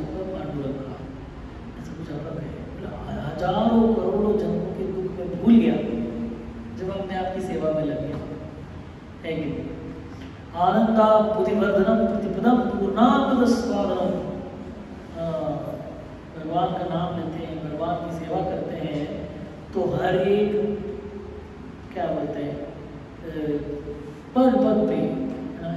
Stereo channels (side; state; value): both; identical; correlation 1.00